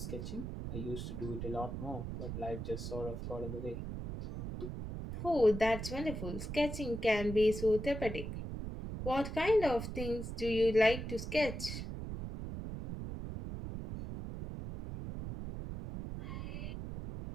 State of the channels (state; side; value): noise; right; rumble, 6 dB below the sound